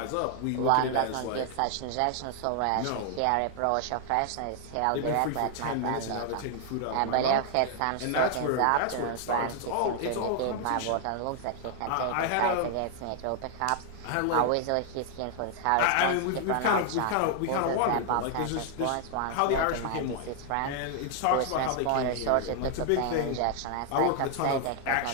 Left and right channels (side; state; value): both; different; correlation 0.00